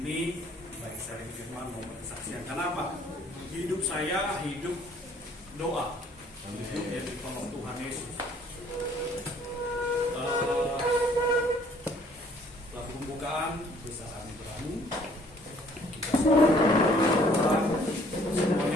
baik sharing firman maupun kesaksian. Kenapa? Hidup saya hidup doa, hidup yang ditolong Tuhan Yesus. Lagu pembukaan bisa kami beramu.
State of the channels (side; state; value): both; normal; correlation 0.59